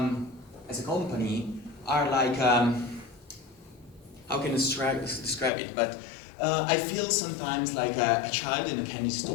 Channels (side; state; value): right; drops out; at 5.5 s